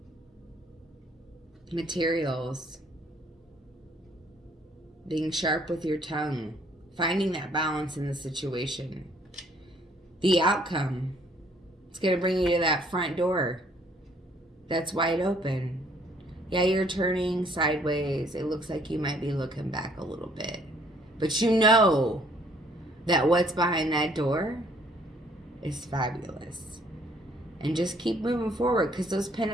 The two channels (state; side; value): normal; both; correlation 0.62